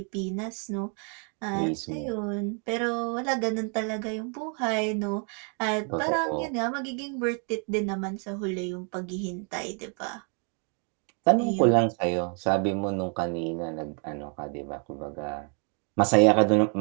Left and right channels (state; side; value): quieter; left; 39.1 dB